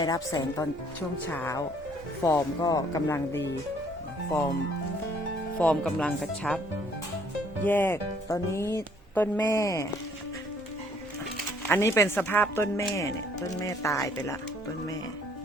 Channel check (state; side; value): normal; both; correlation 0.62